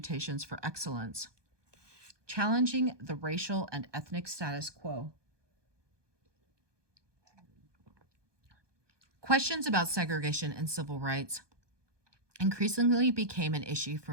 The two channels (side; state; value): left; late; 1.2 ms